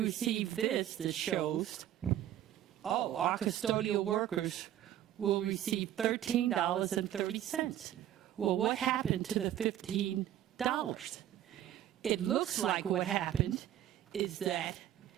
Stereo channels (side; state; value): left; quieter; 12.1 dB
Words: this that shows, our custodial workers will receive $13.30. Well, what happened to the $15? It looks like what happened is that